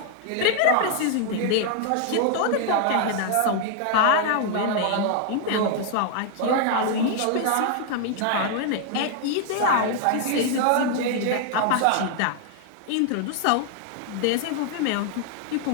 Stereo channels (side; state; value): both; different; correlation 0.00